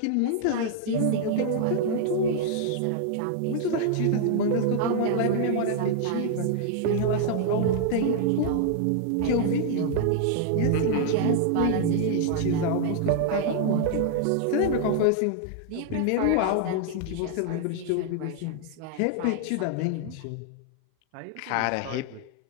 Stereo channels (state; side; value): different; both; correlation 0.00